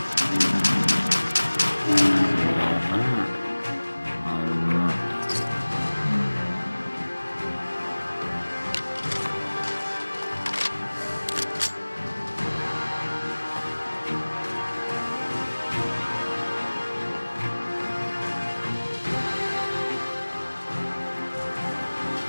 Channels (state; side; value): inverted; both; correlation -1.00